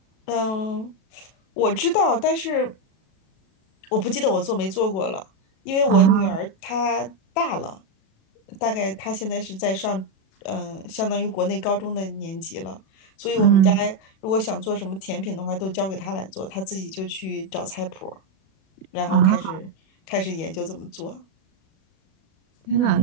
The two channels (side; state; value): right; late; 37 ms